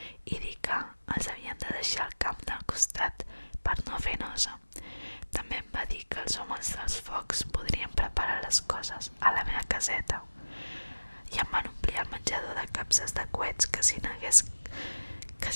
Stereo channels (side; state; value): both; inverted; correlation -1.00